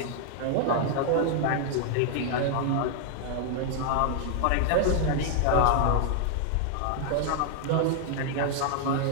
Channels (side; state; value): both; different; correlation 0.00